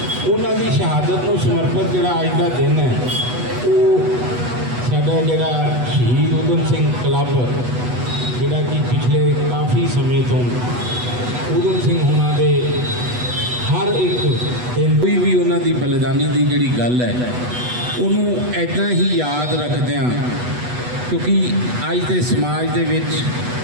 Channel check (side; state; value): left; late; 8.1 ms